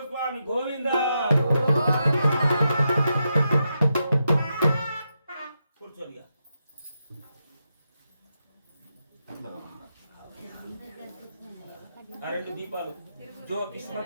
स्वामी गोविंद కూర్చోనిగా రెండు దీపాలు జో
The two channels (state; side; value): inverted; both; correlation -0.85